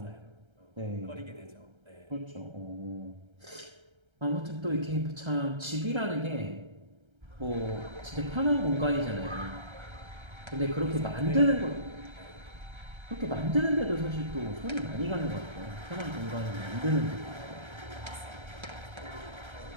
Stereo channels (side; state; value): left; late; 1.3 ms